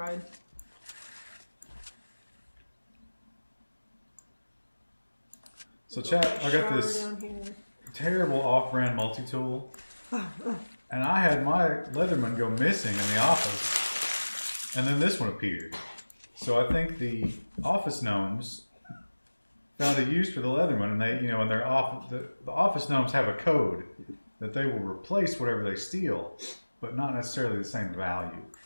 So chat, I got this terrible off-brand multi-tool, and I had my Leatherman go missing in the office, and then this one appeared. So I think the office gnomes found a use for the Leatherman, and they, in their office, the office gnomes have a code that they will replace whatever they steal, but not necessarily the same value.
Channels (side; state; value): both; inverted; correlation -1.00